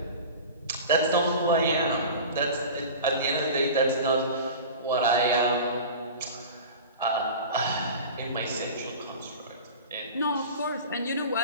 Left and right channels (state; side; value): inverted; both; correlation -0.35